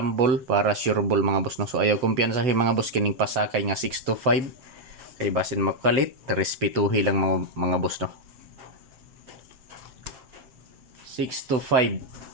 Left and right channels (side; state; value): left; late; 7.6 ms